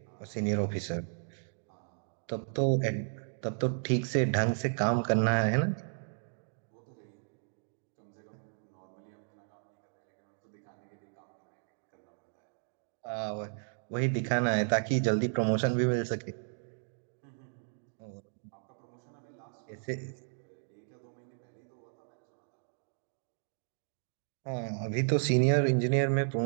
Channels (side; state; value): left; silent; digital silence